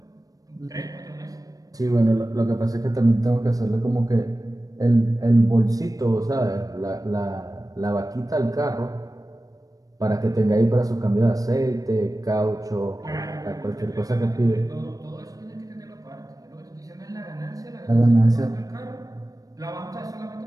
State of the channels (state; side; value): late; left; 0.17 ms